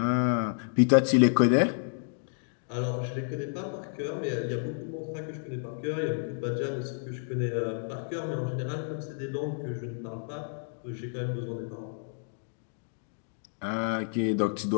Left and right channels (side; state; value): right; silent; digital silence